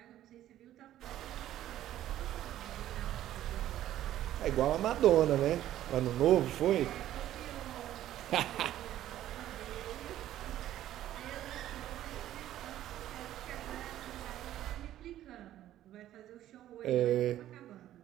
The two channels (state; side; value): quieter; left; 12.9 dB